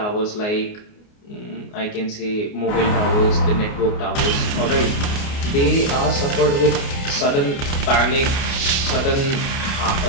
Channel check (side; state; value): right; late; 29 ms